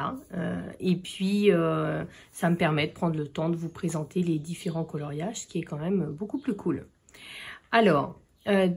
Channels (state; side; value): identical; both; correlation 1.00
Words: et puis ça me permet de prendre le temps de vous présenter les différents coloriages, ce qui est quand même beaucoup plus cool. Alors,